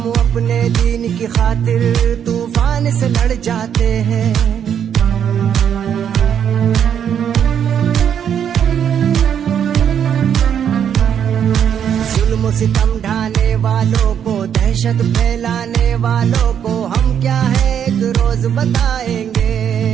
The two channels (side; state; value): left; quieter; 8.7 dB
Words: अपने दीन की खातिर तूफान से लड़ जाते हैं। जुल्म सितम ढाने वालों को, दहशत फैलाने वालों को हम क्या है एक रोज बताएंगे।